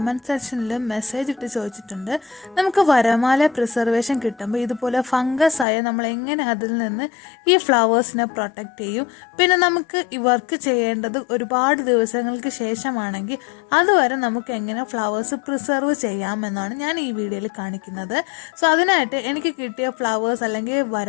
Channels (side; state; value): right; drops out; at 5.7 s